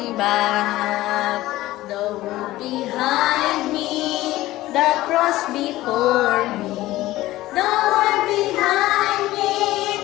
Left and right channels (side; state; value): right; quieter; 16.6 dB